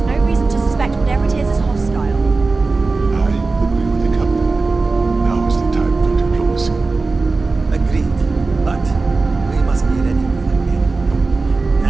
no reason to suspect whatever it is hostile. I agree with the captain. Now is the time for diplomacy. Agreed. But we must be ready for it.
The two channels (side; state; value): left; quieter; 3.8 dB